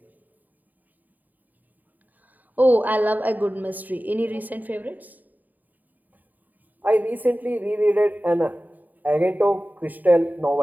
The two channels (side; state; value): left; late; 0.084 ms